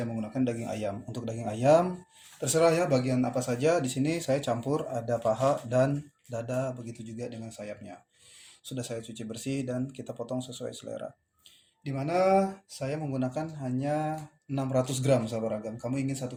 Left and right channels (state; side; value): identical; both; correlation 1.00